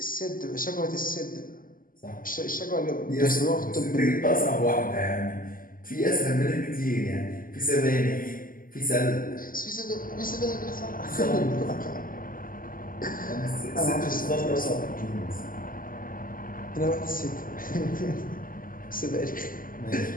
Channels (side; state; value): right; late; 0.41 ms